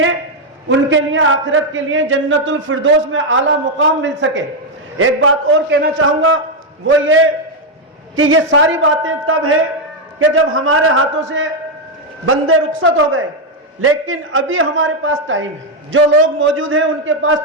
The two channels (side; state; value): both; normal; correlation 0.02